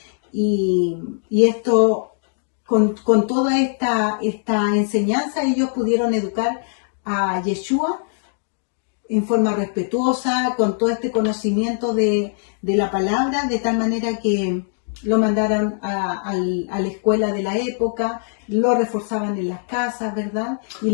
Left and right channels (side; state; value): right; silent; digital silence